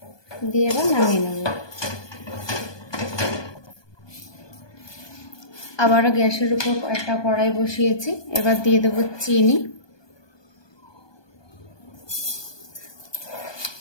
দিয়ে এবার নামিয়ে নেব। আবারও গ্যাসের উপর একটা কড়াই বসিয়েছি। এবার দিয়ে দেব চিনি,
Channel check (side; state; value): right; late; 1.2 ms